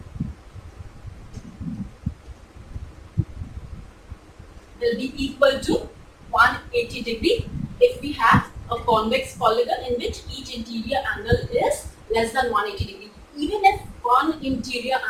will be equal to 180 degree if we have a convex polygon in which each interior angle is less than 180 degree. Even if one interior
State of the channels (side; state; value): both; identical; correlation 1.00